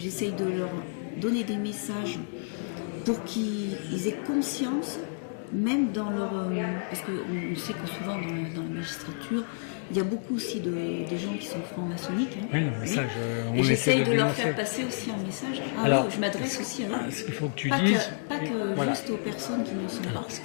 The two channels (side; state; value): right; silent; digital silence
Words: de leur donner des messages pour qu'ils aient conscience, même dans leur... parce qu'on sait que souvent dans la magistrature, il y a beaucoup aussi de gens qui sont francs-maçonniques. Hein. Oui, le message, et j'essaye de leur faire passer aussi un message. Alors, oui, je m'adresse aussi à eux. Ce qu'il faut que tu dises... Pas que juste aux personnes qui ne sont pas. Ce